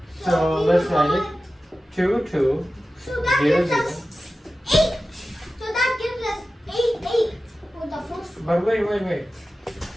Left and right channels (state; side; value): normal; both; correlation 0.94